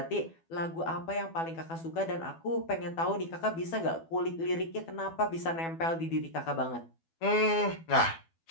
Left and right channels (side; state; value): right; late; 12 ms